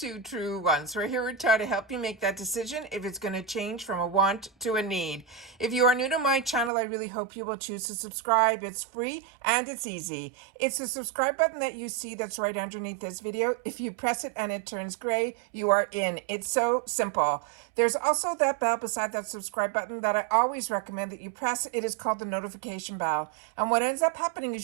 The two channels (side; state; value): left; drops out; at 6.7 s